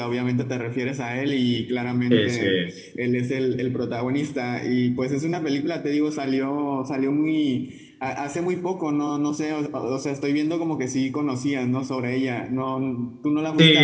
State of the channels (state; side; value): identical; both; correlation 1.00